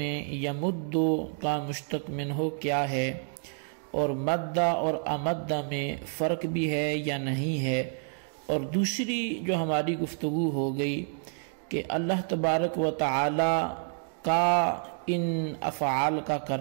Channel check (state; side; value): silent; left; 59 dB below the other